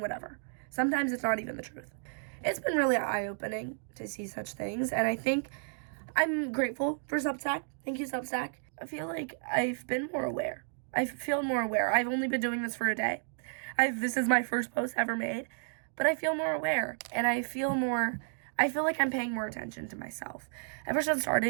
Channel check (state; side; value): silent; left; digital silence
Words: Sometimes it's not even the truth. It's been really eye-opening to see such things, and I think I'm grateful for Substack. Thank you, Substack. I feel like I've been more aware. I feel more aware. I've only been doing this for a day. This is my first post ever made, but I feel more aware, and I feel like I'm paying more attention to myself. Ever since